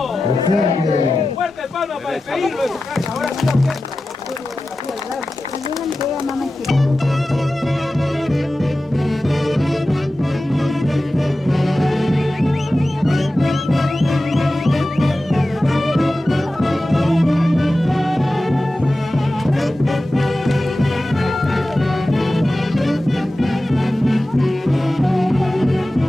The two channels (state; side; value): normal; both; correlation 0.94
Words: Fuerte palma para despedirlo de su casa. Ahora sí la orquesta.